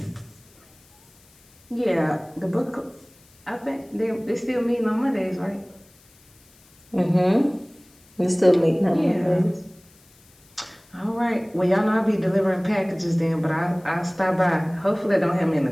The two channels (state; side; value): noise; left; hiss, 29 dB below the sound